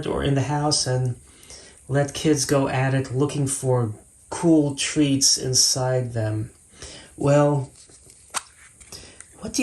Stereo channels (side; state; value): both; identical; correlation 1.00